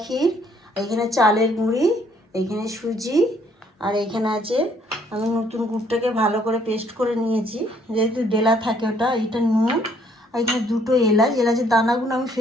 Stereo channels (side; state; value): both; normal; correlation 0.65